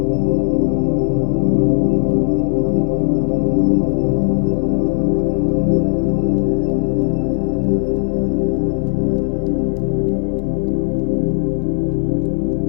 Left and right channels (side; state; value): right; silent; 60 dB below the other